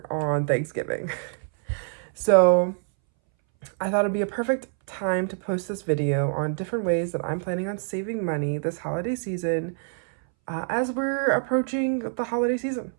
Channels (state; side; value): silent; left; 61 dB below the other